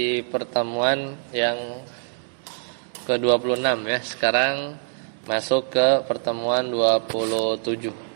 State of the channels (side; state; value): left; silent; 60 dB below the other